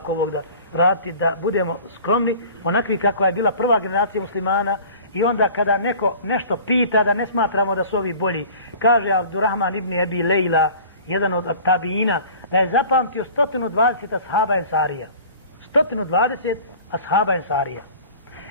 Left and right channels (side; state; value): both; inverted; correlation -0.44